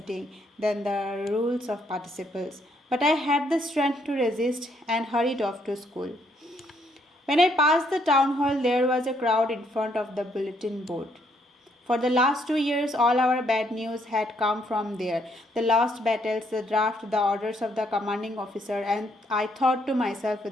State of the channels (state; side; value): normal; both; correlation 0.71